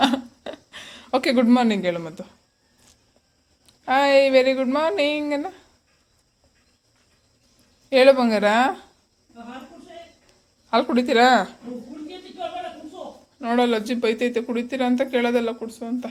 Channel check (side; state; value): both; identical; correlation 1.00